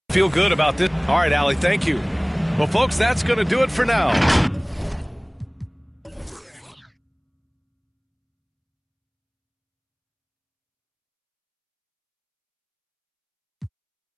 feel good about this. All right, Allie, thank you. Well, folks, that's going to do it for now.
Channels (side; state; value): both; identical; correlation 1.00